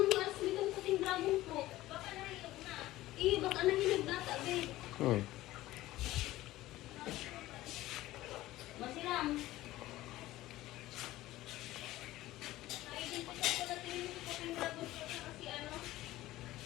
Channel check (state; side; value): quieter; right; 16.4 dB